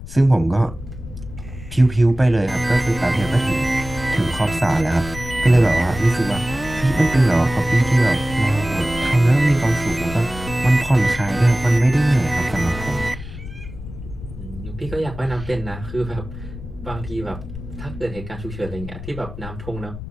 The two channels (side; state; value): left; noise; rumble, 12 dB below the sound